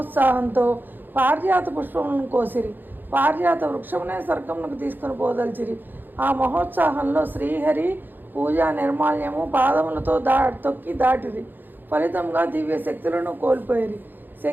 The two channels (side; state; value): left; late; 0.090 ms